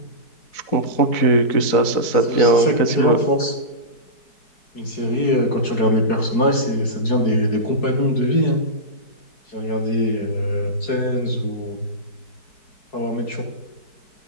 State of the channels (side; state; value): right; late; 4.7 ms